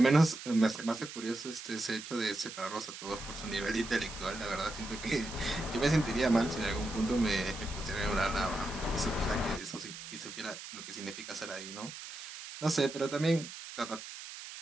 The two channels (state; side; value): noise; right; hiss, 11 dB below the sound